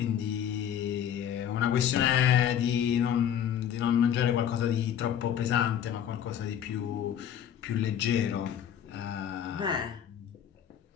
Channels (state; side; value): quieter; right; 9.4 dB